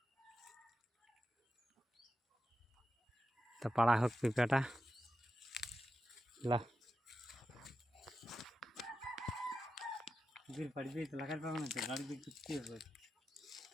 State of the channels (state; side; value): normal; both; correlation 0.90